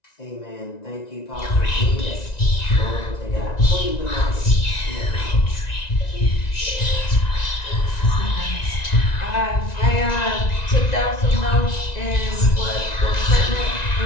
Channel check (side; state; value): right; late; 1.9 ms